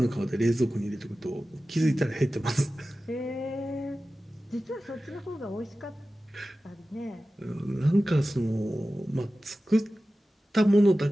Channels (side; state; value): both; normal; correlation 0.95